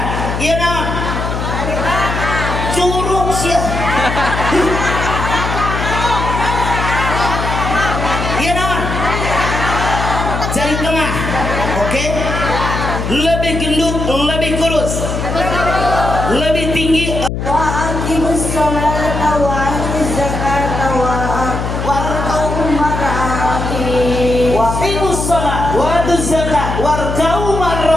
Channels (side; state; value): left; noise; hum, 3 dB below the sound